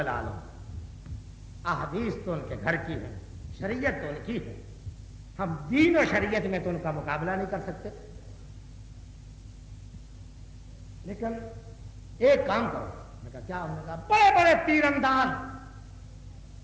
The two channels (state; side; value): identical; both; correlation 1.00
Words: عالم، احادیث تو ان کے گھر کی ہے، شریعت تو ان کی ہے، ہم دین و شریعت میں تو ان کا مقابلہ نہیں کر سکتے، لیکن ایک کام کرو۔ میں کہا کیا؟ انہوں نے کہا بڑے بڑے تیر انداز